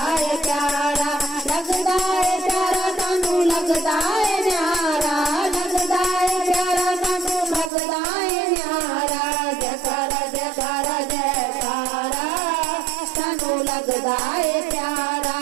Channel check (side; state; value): left; drops out; at 7.7 s